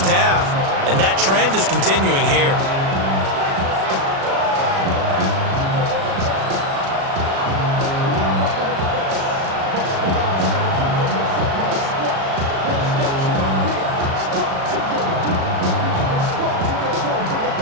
half, and that trend is continuing here.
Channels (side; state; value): left; late; 36 ms